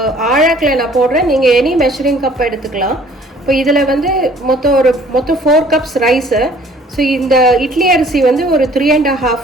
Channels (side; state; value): both; normal; correlation 0.55